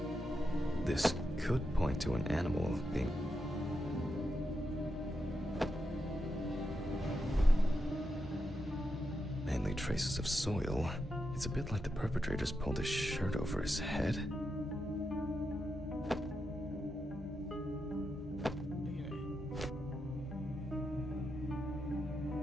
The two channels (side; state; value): both; normal; correlation 0.86